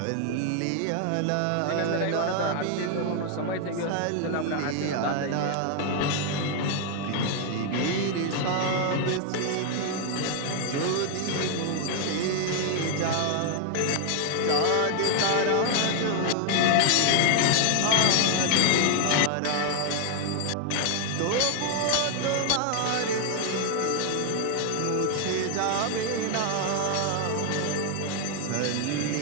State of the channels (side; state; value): both; different; correlation 0.00